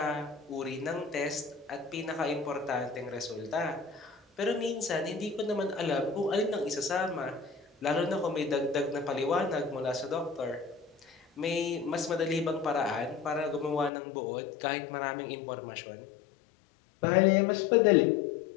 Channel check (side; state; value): right; drops out; at 13.9 s